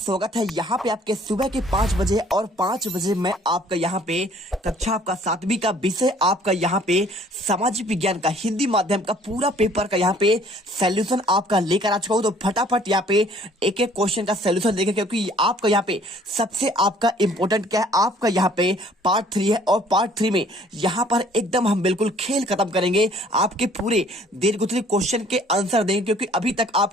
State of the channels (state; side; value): normal; both; correlation 0.57